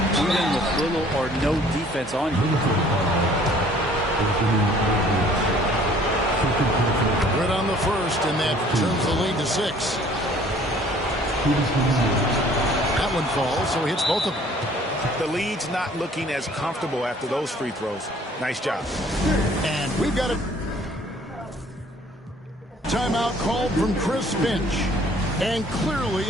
even with little or no defense on you. Good on the first, and that turns the lead to 6. That one falls, so he hits both of them. The lead's not looking as comfortable after those free throws. Nice job. And we've got a timeout called from Chris Finch. And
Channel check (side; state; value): both; normal; correlation 0.55